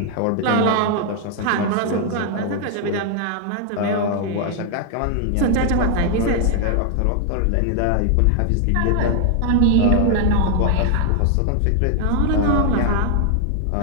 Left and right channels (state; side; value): different; both; correlation 0.00